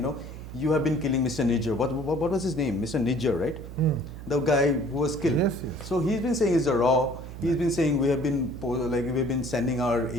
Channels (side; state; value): right; noise; hum, 11 dB below the sound